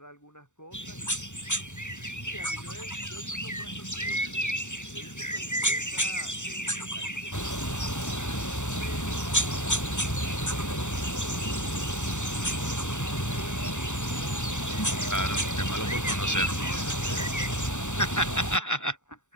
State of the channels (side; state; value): right; late; 0.84 ms